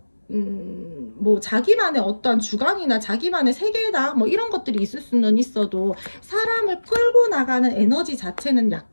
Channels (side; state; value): both; inverted; correlation -1.00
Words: 뭐 자기만의 어떤 주관이나 자기만의 세계다 뭐 이런 것들이 있을 수는 있어도 사람을 끌고 나가는 에너지 자체는